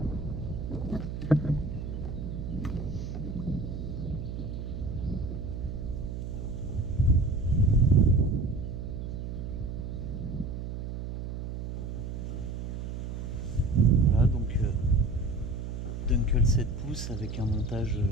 Voilà, donc Dunkel 7 pouces avec un montage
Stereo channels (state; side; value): noise; right; hum, 6 dB below the sound